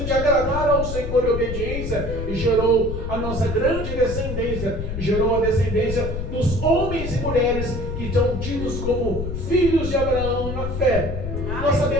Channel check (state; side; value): noise; left; rumble, 5 dB below the sound